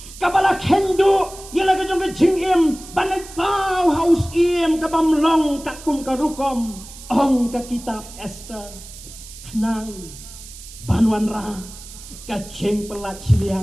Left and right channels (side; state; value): right; noise; hiss, 16 dB below the sound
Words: kabala kendo yala ka jong ka jing banay pau haus kabam long kakum karukom ong ka kitab Esther nang banwan ra ka jing pelat